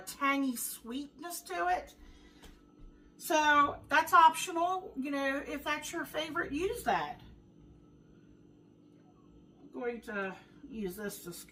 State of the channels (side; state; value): both; identical; correlation 1.00